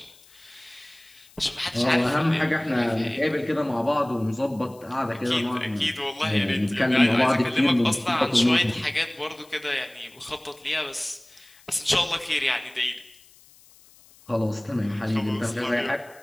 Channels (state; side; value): noise; left; hiss, 26 dB below the sound